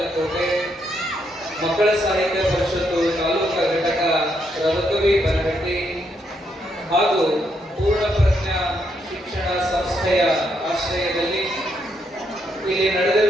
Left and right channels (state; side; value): normal; both; correlation 0.77